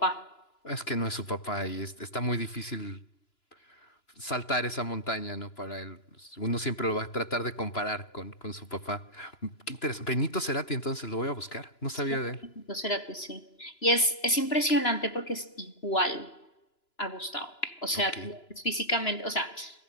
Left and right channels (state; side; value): late; right; 2.9 ms